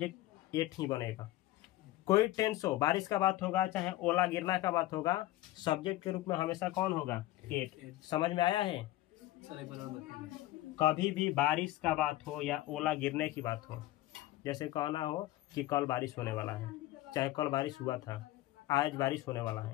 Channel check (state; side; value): quieter; right; 16.0 dB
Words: एट ही बनेगा। कोई टेंस हो, बारिश का बात होगा चाहे ओला गिरना का बात होगा, सब्जेक्ट के रूप में हमेशा कौन होगा? एट। समझ में आया है? सर एक बार और बताइए। कभी भी बारिश का बात हो या ओला गिरने की बात हो, जैसे कहना हो कि कल बारिश होने वाला है, चाहे कल बारिश हुआ था, आज बारिश होने वाला